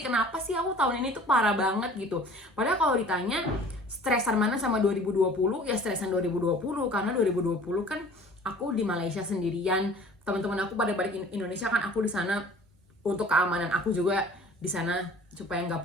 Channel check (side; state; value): both; normal; correlation 0.48